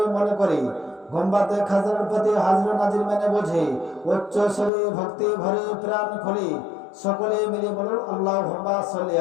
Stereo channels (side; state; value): right; drops out; at 4.7 s